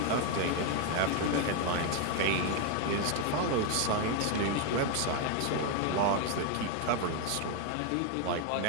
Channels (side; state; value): both; different; correlation 0.01